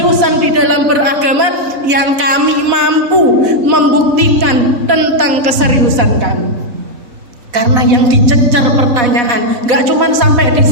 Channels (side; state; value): left; late; 4.0 ms